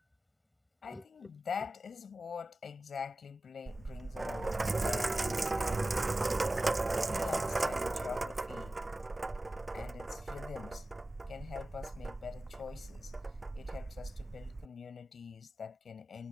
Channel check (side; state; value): both; normal; correlation 0.95